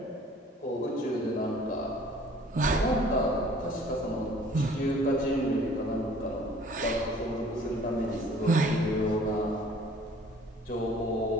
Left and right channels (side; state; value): both; normal; correlation 0.53